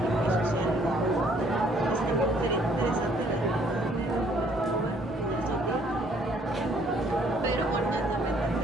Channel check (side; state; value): both; normal; correlation 0.63